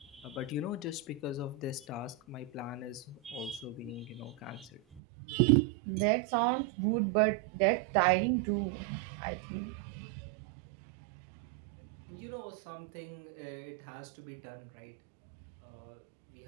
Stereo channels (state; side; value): drops out; left; at 5.0 s